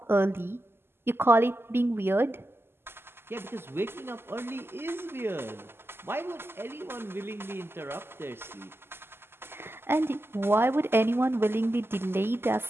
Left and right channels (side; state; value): left; late; 0.11 ms